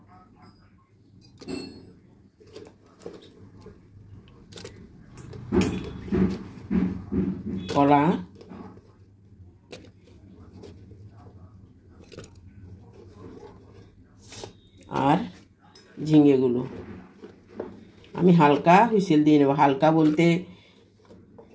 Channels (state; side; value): identical; both; correlation 1.00